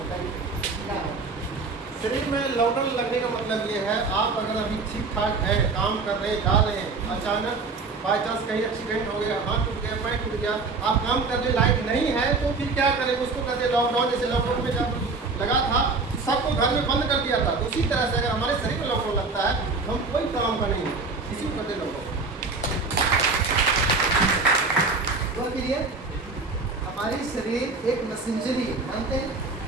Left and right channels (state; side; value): quieter; left; 4.0 dB